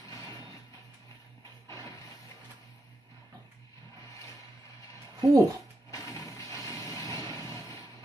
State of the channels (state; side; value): normal; both; correlation 0.84